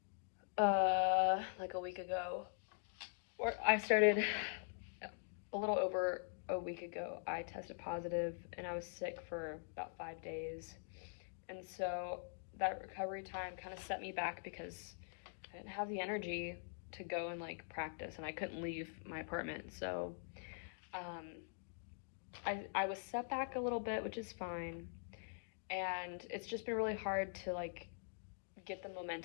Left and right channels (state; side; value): silent; right; digital silence